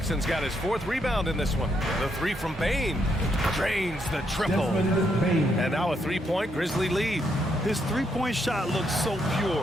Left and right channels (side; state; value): both; normal; correlation 0.77